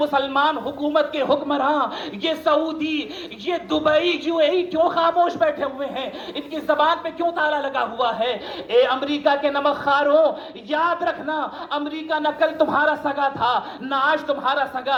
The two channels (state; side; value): identical; both; correlation 1.00